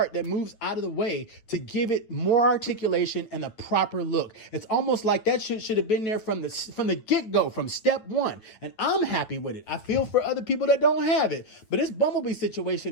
that moves out of the way to give it more articulation and a proper look. It's almost like that shit should have been there from the get-go, from step one. And I'm happy with it. I feel for other people that don't have it. But this Bumblebee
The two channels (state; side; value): late; right; 9.2 ms